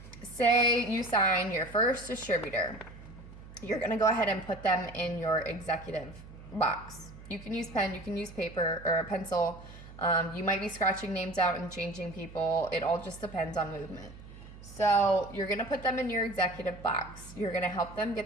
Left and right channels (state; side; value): noise; right; hum, 17 dB below the sound